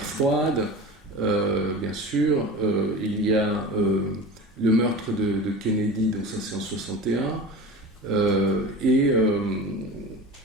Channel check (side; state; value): both; normal; correlation 0.34